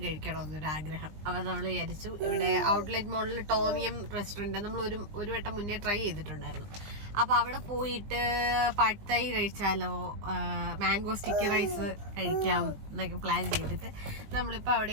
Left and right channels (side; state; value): left; late; 20 ms